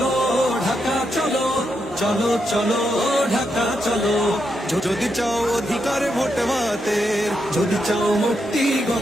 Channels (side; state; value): both; normal; correlation 0.82